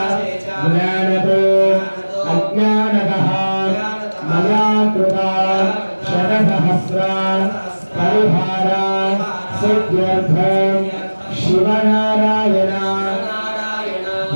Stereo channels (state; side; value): inverted; both; correlation -1.00